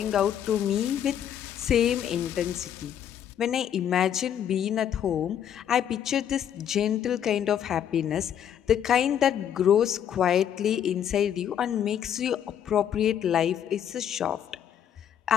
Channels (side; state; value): right; quieter; 9.5 dB